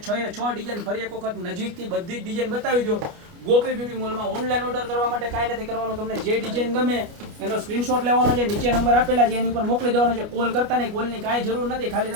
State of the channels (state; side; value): late; left; 29 ms